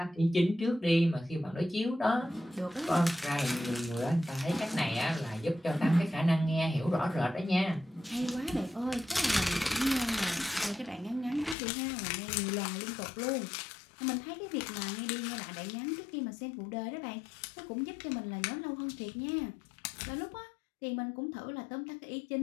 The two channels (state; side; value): drops out; right; at 11.6 s